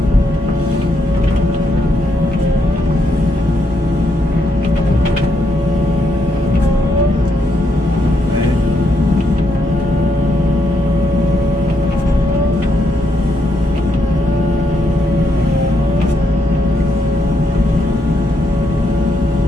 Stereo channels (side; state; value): both; normal; correlation 0.78